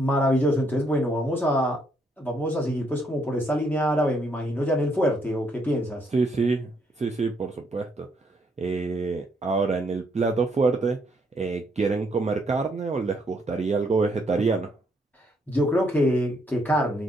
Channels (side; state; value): both; normal; correlation 0.72